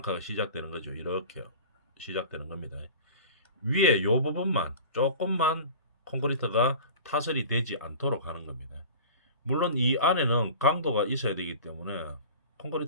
시작되는 거죠. 이렇게 시작되는 겁니다. 위에 요 부분만 조금만 콘크리트가 타설이 되지 않도록 하는 겁니다. 물론 이 안에는 강도가 있어야 되기 때문에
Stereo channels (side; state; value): both; inverted; correlation -0.38